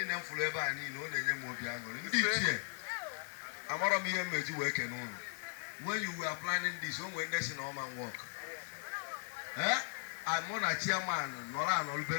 m fụrụ ebe a niile ọ na-enye m obi aṅụrị. Ndị ichie amarọ m ihe mmeji wee kene ụlọ when you were planning this o nwere ndị si na ọma work mụ na chairman nọrọ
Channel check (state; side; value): silent; right; 52 dB below the other